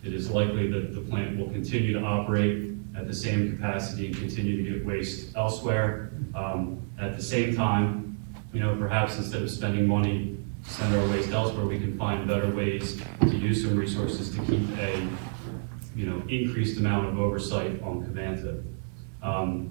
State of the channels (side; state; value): left; silent; 59 dB below the other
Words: it is likely that the plant will continue to operate at the same capacity and continue to get waste elsewhere. At the same time, you know, perhaps instead of spending money to send our waste elsewhere, we can find better ways to use some resources to keep a, you know, increased amount of oversight on Covanta.